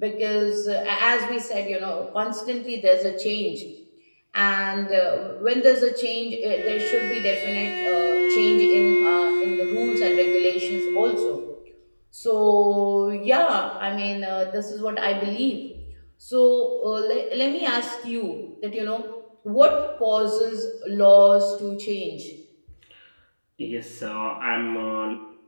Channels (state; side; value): inverted; both; correlation -1.00